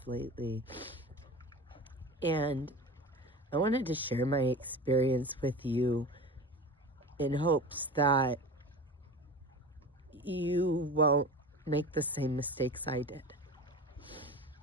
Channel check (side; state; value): both; normal; correlation 0.33